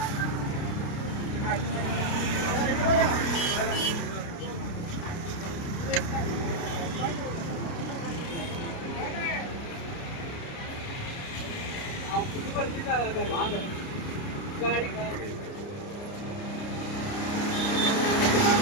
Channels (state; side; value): late; right; 29 ms